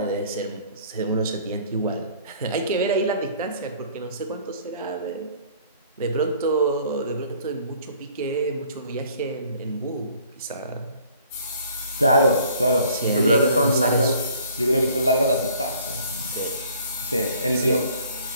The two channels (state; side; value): inverted; both; correlation -0.56